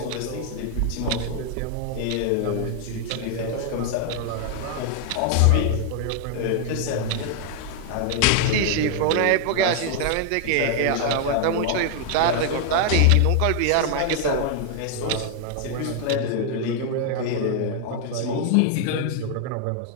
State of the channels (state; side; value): different; both; correlation 0.00